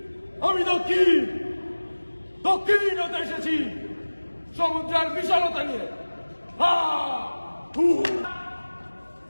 আমি দক্ষিণ হতে এসেছি সমুদ্রের বিশালতা নিয়ে।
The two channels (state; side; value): inverted; both; correlation -1.00